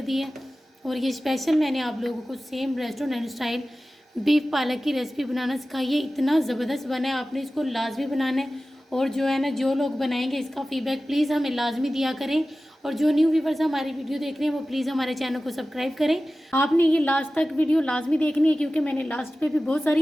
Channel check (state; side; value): normal; both; correlation 0.96